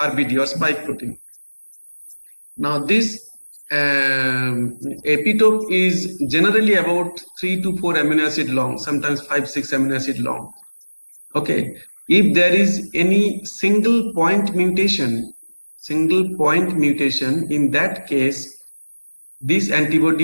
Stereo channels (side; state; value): both; inverted; correlation -1.00